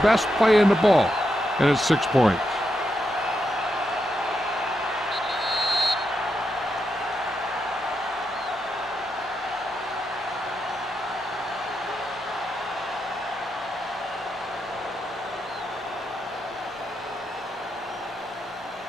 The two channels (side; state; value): both; normal; correlation 0.84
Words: play in the ball, and it's 6 points.